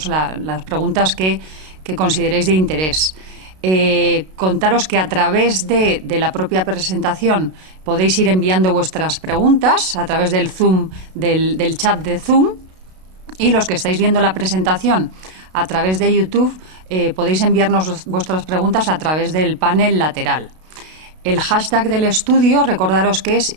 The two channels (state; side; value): late; left; 32 ms